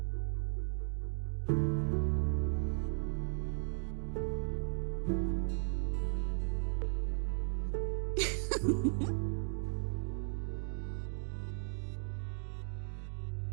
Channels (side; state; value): left; silent; digital silence